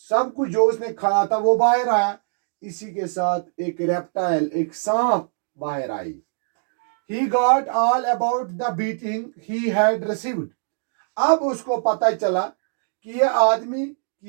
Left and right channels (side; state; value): left; silent; digital silence